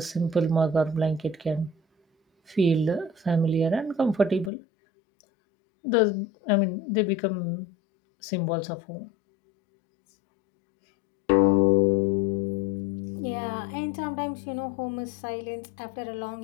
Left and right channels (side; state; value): right; drops out; at 4.5 s